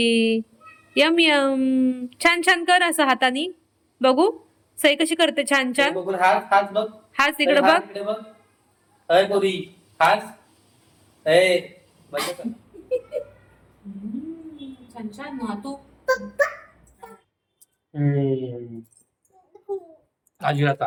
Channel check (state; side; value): identical; both; correlation 1.00